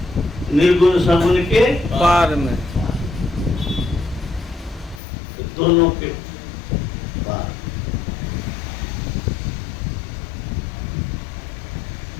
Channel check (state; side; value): drops out; right; at 5.0 s